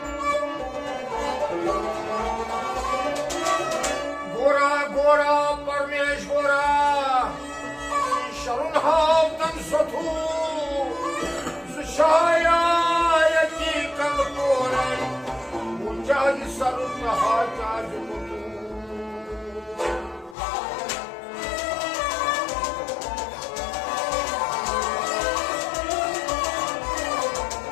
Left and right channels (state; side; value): drops out; right; at 20.4 s